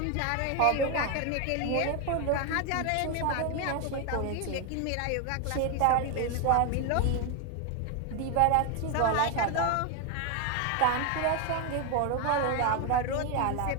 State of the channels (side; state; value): both; different; correlation 0.01